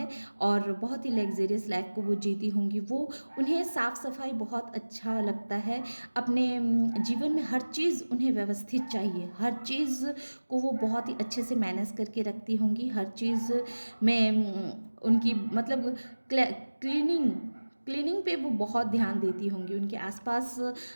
और बहुत ही लग्जेरियस लाइफ को वो जीती होंगी। वो उन्हें साफ़ सफाई बहुत अच्छा लगता है, अपने जीवन में हर चीज़ उन्हें व्यवस्थित चाहिए, हर चीज़ को वो बहुत ही अच्छे से मैनेज करके रखती होंगी, हर चीज़ में उनकी मतलब क्लीनिंग क्लीनिंग पे वो बहुत ध्यान देती होंगी, उनके आसपास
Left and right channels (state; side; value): inverted; both; correlation -1.00